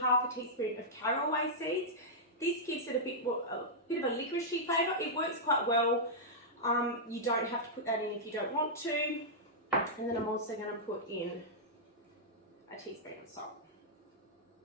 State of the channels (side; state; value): both; normal; correlation -0.10